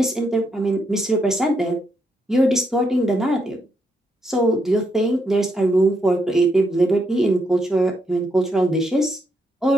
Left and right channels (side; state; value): both; normal; correlation 0.79